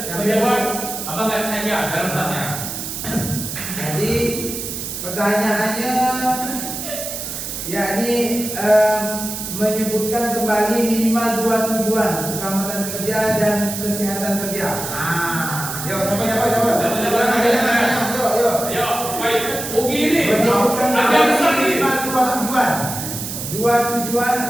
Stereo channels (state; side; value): noise; right; hiss, 6 dB below the sound